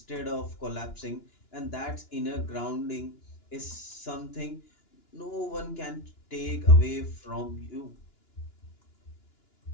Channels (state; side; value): late; right; 2.9 ms